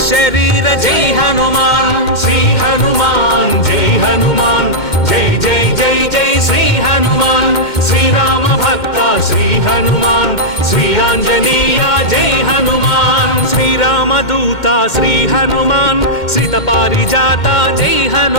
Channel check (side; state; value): right; late; 2.1 ms